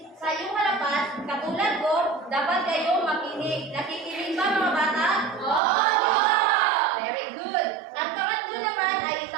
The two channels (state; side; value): drops out; left; at 5.6 s